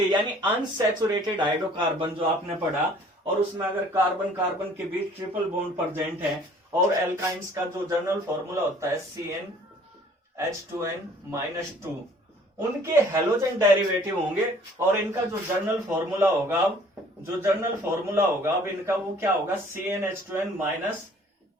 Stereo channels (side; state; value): both; normal; correlation 0.55